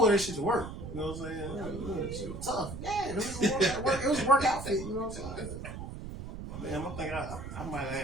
that shit to work, you know what I'm saying? That shit was tough. Yeah, it was a work outfit, you know what I'm saying? Man, I think I might have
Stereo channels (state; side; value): noise; right; rumble, 9 dB below the sound